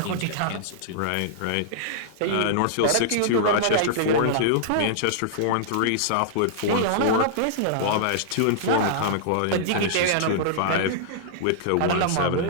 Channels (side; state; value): both; different; correlation -0.02